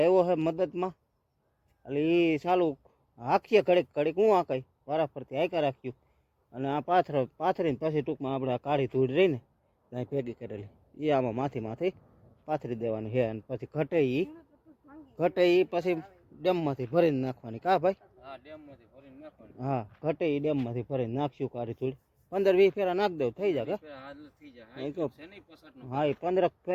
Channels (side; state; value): both; identical; correlation 1.00